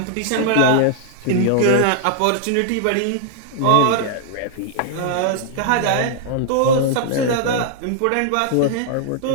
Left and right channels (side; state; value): both; different; correlation 0.00